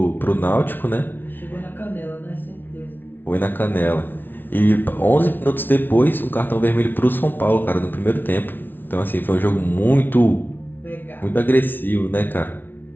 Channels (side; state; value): right; late; 0.094 ms